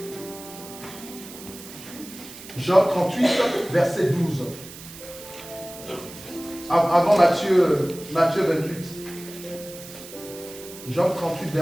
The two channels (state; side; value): noise; right; hiss, 15 dB below the sound